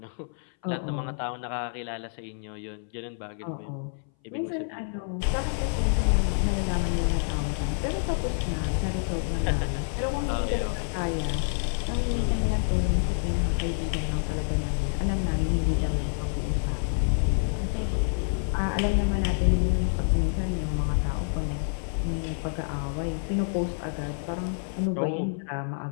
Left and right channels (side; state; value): right; silent; 59 dB below the other